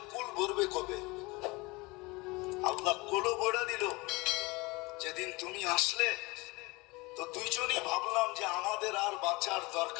কুল ভরবে কবে। আল্লাহ কোলও বড়া দিল যেদিন তুমি আসলে। তো 2 জনই ভাবলাম যে আমাদের আর বাঁচার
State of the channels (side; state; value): right; quieter; 24.1 dB